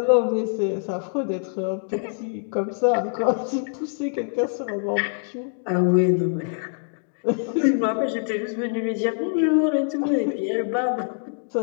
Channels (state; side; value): silent; right; digital silence